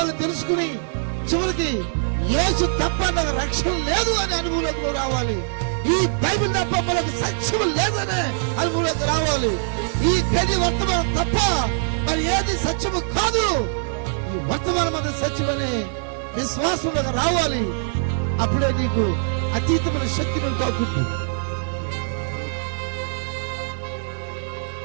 తెలుసుకుని చివరికి యేసు తప్ప నాకు రక్షణ లేదు అనే అనుభవంలోకి రావాలి. ఈ బైబిల్ తప్ప మనకు సత్యం లేదనే అనుభవంలోకి రావాలి. ఈ గది వర్తమానం తప్ప మరి ఏది సత్యము కాదు, ఈ వర్తమానం అది సత్యమనే విశ్వాసంలోకి రావాలి. అప్పుడే నీకు అతీతమైన శక్తి నువ్వు తాకుంటుంది.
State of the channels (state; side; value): silent; left; 63 dB below the other